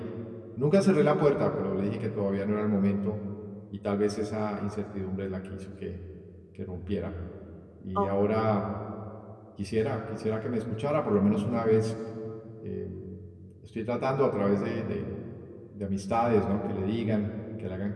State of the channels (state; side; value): identical; both; correlation 1.00